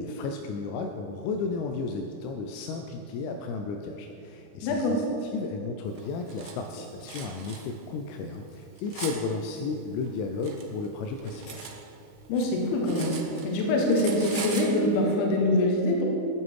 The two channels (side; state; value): right; late; 29 ms